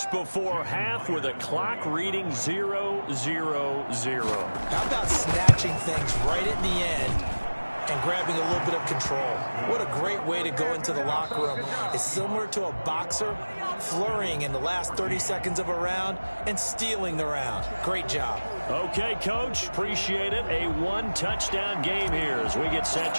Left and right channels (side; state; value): both; inverted; correlation -1.00